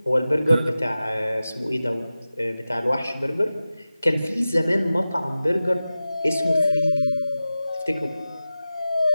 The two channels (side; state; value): both; inverted; correlation -0.95